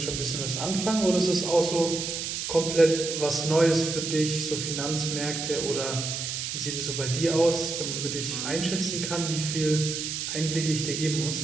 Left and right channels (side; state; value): right; noise; hiss, 4 dB below the sound